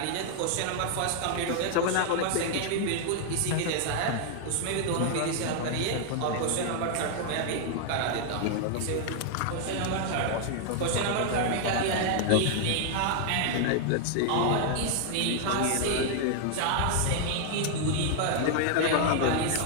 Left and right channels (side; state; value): both; different; correlation 0.00